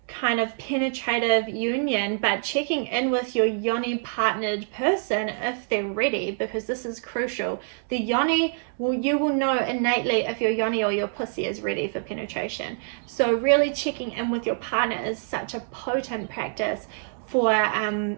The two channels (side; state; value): left; silent; digital silence